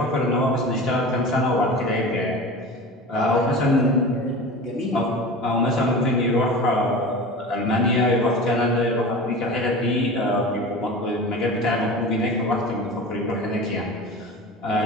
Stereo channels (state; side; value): normal; both; correlation 0.34